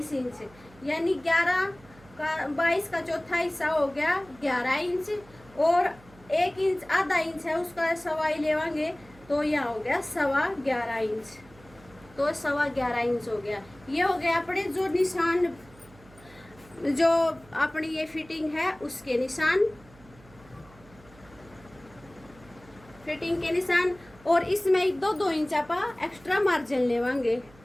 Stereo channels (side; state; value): right; noise; hum, 24 dB below the sound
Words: इंच, यानी 11 का 22 का चौथा हिस्सा हो गया 11 इंच। और 1 इंच आधा इंच है उसका 1.25 लेवांगे तो यहाँ हो गया 11.25 इंच। तो 11.25 इंच हो गया। ये हो गया अपने जो निशान, जो अपनी ये फिटिंग है उसके निशान, फिटिंग के निशान। और इसमें 2 इंच आप एक्स्ट्रा मार्जिन लेवांगे,